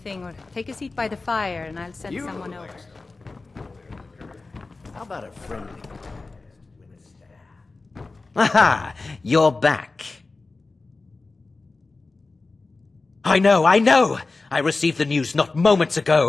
or take a seat by the fire and I'll send someone over. How about a friendly... Aha! You're back. I know! I received the news not moments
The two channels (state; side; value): quieter; right; 3.6 dB